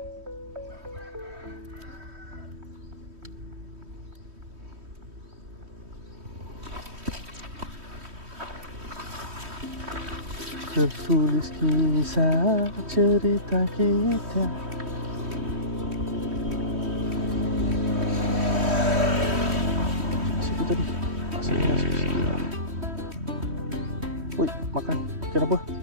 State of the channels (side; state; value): left; late; 3.1 ms